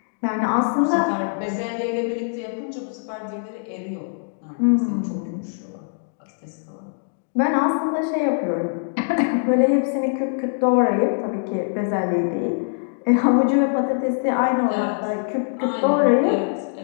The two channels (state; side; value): silent; right; digital silence